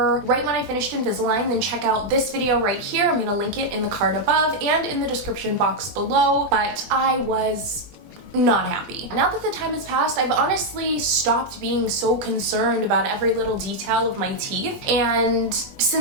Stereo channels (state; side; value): late; left; 20 ms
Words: right when I finished Invisalign, then check out this video right here. I'm gonna link it in the card above and in the description box below, but I was not happy. Now that the time has passed, I've honestly stopped being so concerned about every little detail of my teeth, and